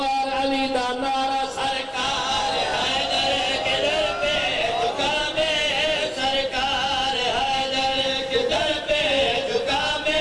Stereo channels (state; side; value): identical; both; correlation 1.00